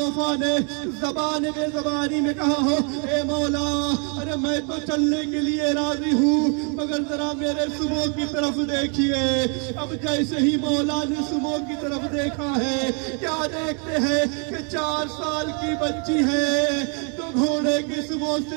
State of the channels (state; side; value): quieter; left; 38.1 dB